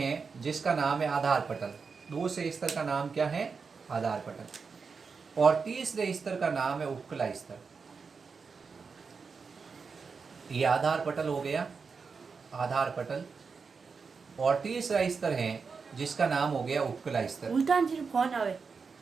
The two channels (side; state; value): left; quieter; 5.2 dB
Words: जिसका नाम है आधार पटल। दूसरे स्तर का नाम क्या है, आधार पटल। और तीसरे स्तर का नाम है उपकला स्तर। ये आधार पटल हो गया, आधार पटल। और तीसरा स्तर है जिसका नाम हो गया उपकला स्तर। उल्टा फोन आवे।